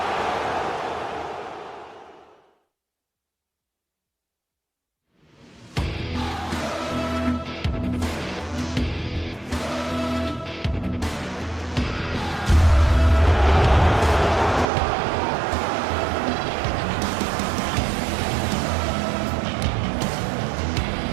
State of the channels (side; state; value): left; drops out; at 14.7 s